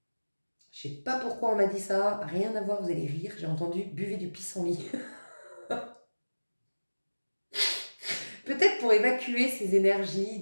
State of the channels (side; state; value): both; inverted; correlation -1.00